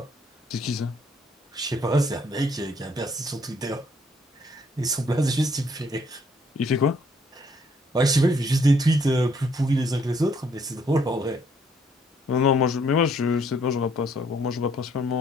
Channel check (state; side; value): normal; both; correlation 0.66